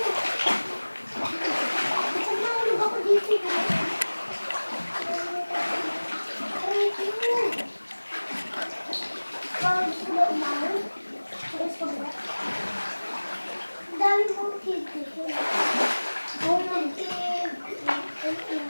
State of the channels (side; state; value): both; inverted; correlation -1.00